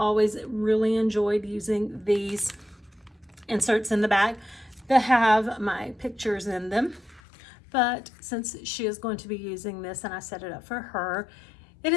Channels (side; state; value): right; drops out; at 7.2 s